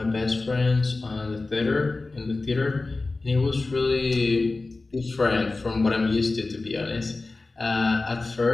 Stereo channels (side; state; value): right; quieter; 3.4 dB